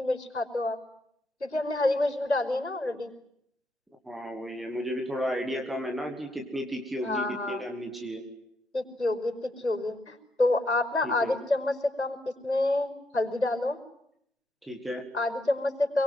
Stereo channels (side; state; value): both; normal; correlation 0.79